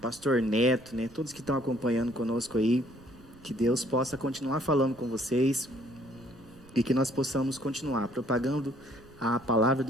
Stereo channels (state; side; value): noise; right; rumble, 23 dB below the sound